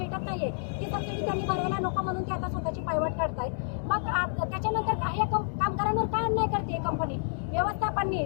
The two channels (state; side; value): silent; right; digital silence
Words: नाहीये, ती सबसिडी त्यांनी भरायला नको म्हणून ते आता स्वतःची पायवाट काढतायत. मग त्याच्यानंतर काही कामगारांवर का अन्याय करते कंपनी व्यवस्थापनने